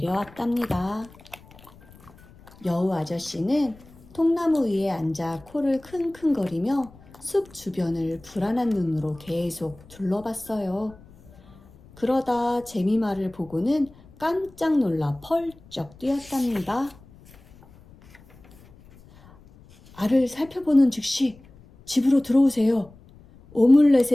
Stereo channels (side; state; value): left; noise; rumble, 24 dB below the sound